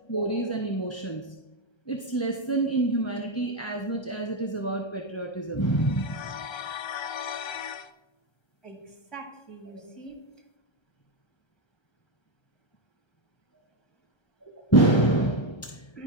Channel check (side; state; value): right; late; 1.3 ms